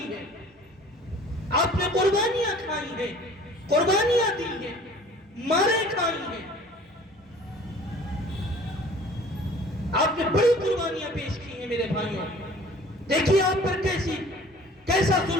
ہے۔ آپ نے قربانیاں کھائی ہیں، قربانیاں دی ہیں، مارے کھائی ہیں، آپ نے بڑی قربانیاں پیش کی ہیں میرے بھائیوں۔ دیکھیے آپ پر کیسا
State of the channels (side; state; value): both; normal; correlation 0.49